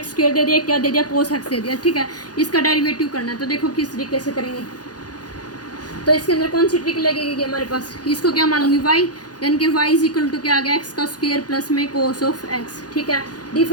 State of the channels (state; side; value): late; right; 0.69 ms